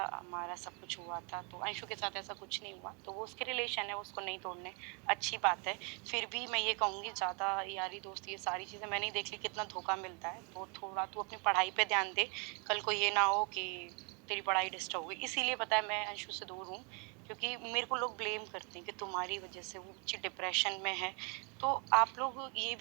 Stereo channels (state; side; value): quieter; left; 34.2 dB